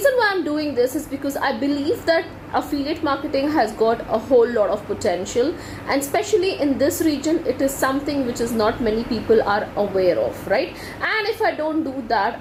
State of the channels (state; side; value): identical; both; correlation 1.00